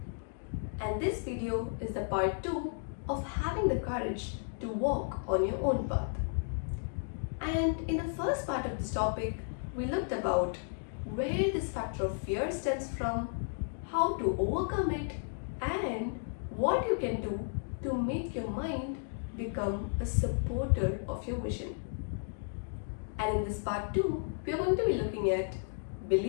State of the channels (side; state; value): right; silent; digital silence